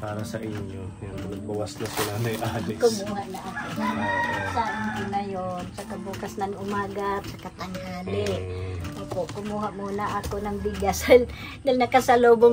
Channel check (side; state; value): both; identical; correlation 1.00